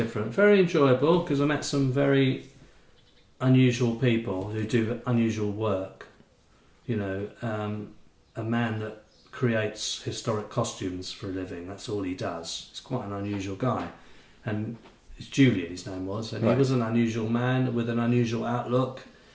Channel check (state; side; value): identical; both; correlation 1.00